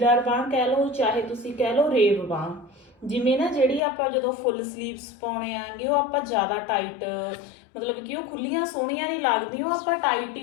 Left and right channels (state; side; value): drops out; right; at 3.8 s